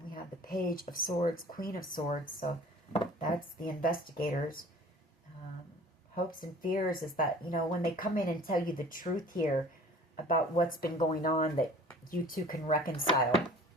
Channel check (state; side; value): normal; both; correlation 0.46